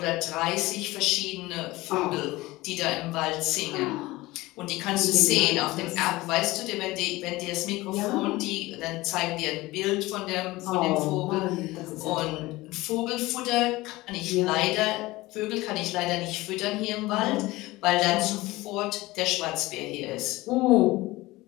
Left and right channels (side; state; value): right; quieter; 19.6 dB